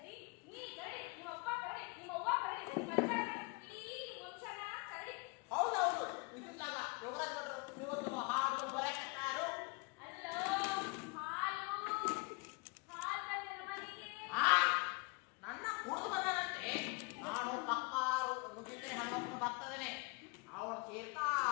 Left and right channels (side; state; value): right; quieter; 29.0 dB